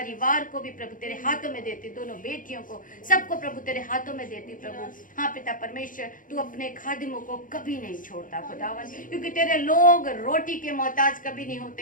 को भी प्रभु तेरे हाथों में देती, दोनों बेटियों को, सबको प्रभु तेरे हाथों में देती प्रभु। हाँ पिता परमेश्वर, तू अपने खादिमों को कभी नहीं छोड़ता खुदावन, क्योंकि तेरे लोग रोटी के मोहताज कभी नहीं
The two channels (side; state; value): right; late; 0.39 ms